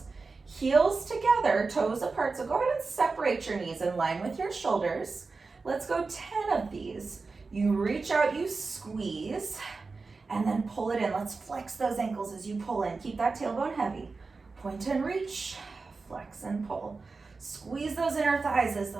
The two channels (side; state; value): left; quieter; 4.2 dB